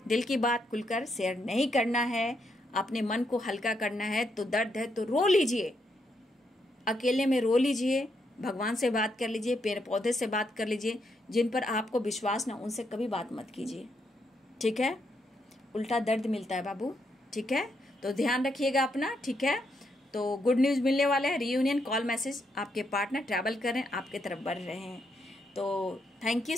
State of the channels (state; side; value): normal; both; correlation 0.78